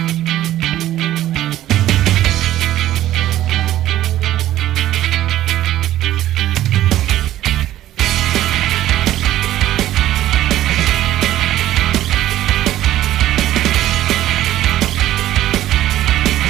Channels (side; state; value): left; quieter; 13.5 dB